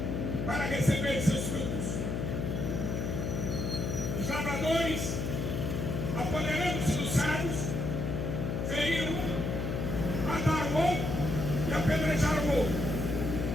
para receber seus frutos. Os lavradores, apoderando-se dos servos, feriram um, mataram o outro e apedrejaram o outro.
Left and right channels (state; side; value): noise; left; hum, 1 dB below the sound